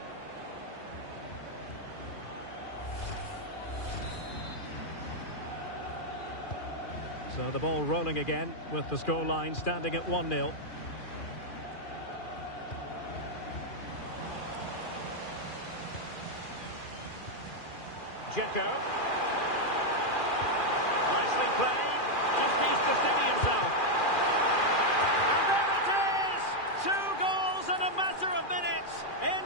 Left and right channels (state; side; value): late; right; 2.4 ms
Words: So the ball rolling again, with the scoreline standing at 1-0. Dzeko. Nicely played. Just needs to steady himself. And there it is! 2 goals in a matter of minutes.